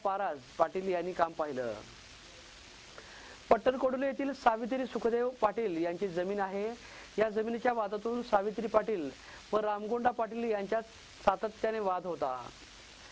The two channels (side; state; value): both; identical; correlation 1.00